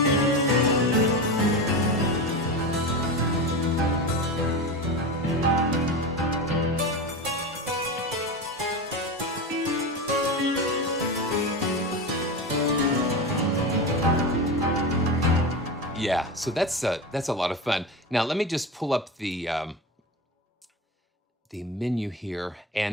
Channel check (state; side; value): normal; both; correlation 0.22